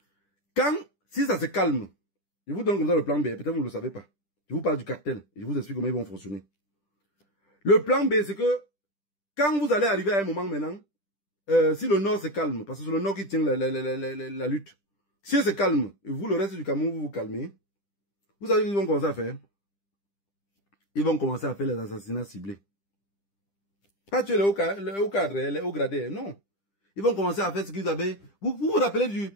Si ça se calme, je vous donne comme ça le plan B, peut-être vous ne le savez pas. Je vous parle du cartel et je vous explique comment ils vont fonctionner. Le plan B, c'est que quand vous allez arriver à un moment maintenant, si le Nord se calme, parce que c'est le Nord qui tient la lutte, si se calme, et vous, le reste du Cameroun, vous vous calmez, vous savez ce qu'ils vont commencer à faire. Ils vont commencer à faire les assassinats ciblés. Pas tuer les hauts cadres, les hauts gradés, non. Ils vont commencer à faire ce qu'ils avaient. Vous vous rappelez du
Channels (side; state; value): right; late; 10 ms